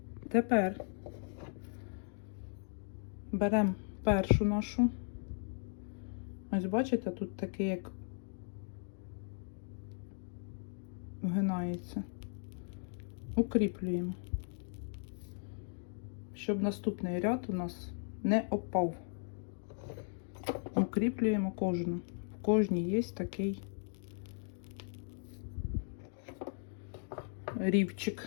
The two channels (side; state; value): right; silent; 53 dB below the other